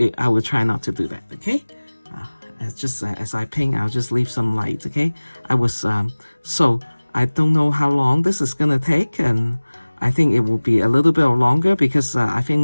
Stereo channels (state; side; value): inverted; both; correlation -1.00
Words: try not to do that, okay? As I paint, I'll just leave some light, okay? So I don't know how long this is gonna take, and I think it will be a little bit longer, because I